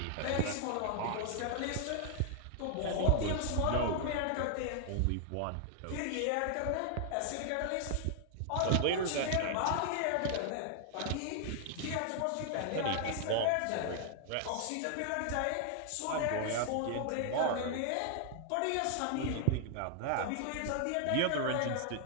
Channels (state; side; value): different; both; correlation 0.00